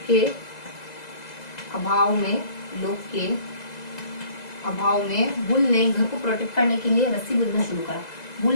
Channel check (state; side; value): late; right; 2.0 ms